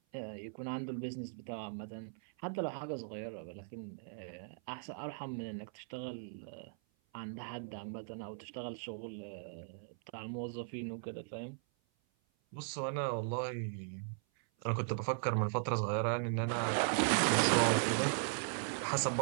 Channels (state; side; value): silent; left; 52 dB below the other